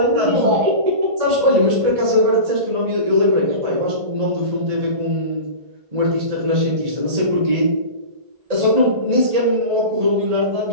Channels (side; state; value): left; late; 1.8 ms